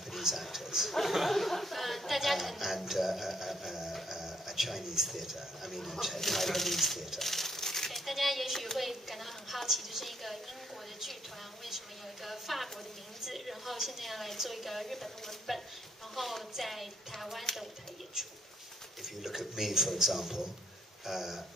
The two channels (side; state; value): both; normal; correlation 0.71